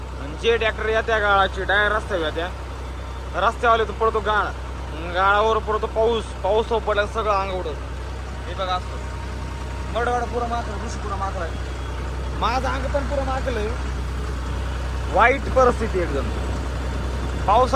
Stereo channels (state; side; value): identical; both; correlation 1.00